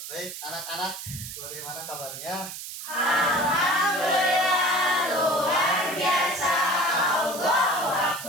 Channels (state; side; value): noise; right; hiss, 9 dB below the sound